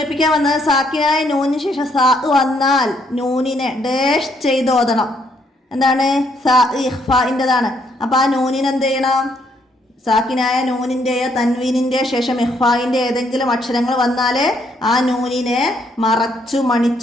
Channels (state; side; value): normal; both; correlation 0.71